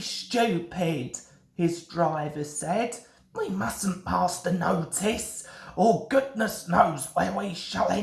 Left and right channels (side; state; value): both; identical; correlation 1.00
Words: stupid, his driver said. We mustn't pass the notice, or goodness knows where we shall